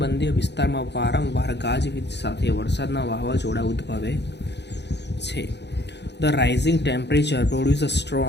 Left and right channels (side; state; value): right; late; 0.50 ms